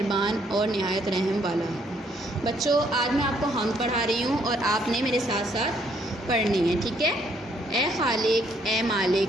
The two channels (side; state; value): both; normal; correlation 0.68